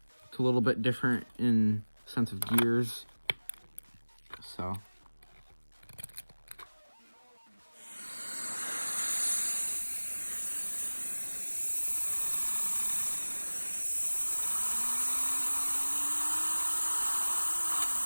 a little bit different in sense of gears.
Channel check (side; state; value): both; inverted; correlation -1.00